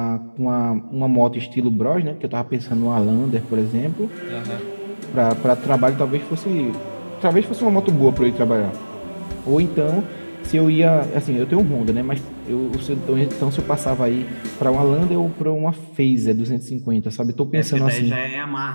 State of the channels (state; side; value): inverted; both; correlation -1.00